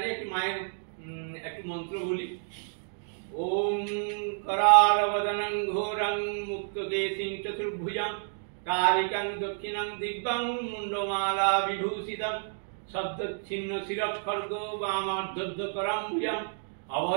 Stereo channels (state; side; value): silent; left; digital silence